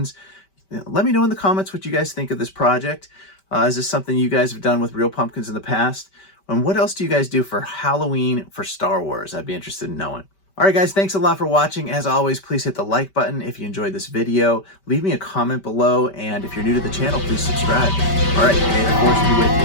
Let me know in the comments what you guys think of this project. Is this something you guys have done with real pumpkins in the past? And what else do you guys do for Halloween for Star Wars? I'd be interested in knowing. All right, guys, thanks a lot for watching. As always, please hit the like button if you enjoyed this video. Leave me a comment below, and if you're new to the channel, please subscribe. All right, may the Force be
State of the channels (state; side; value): late; right; 5.2 ms